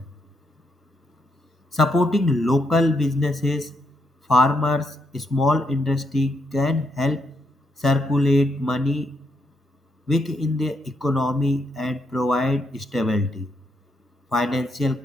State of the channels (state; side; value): normal; both; correlation 0.78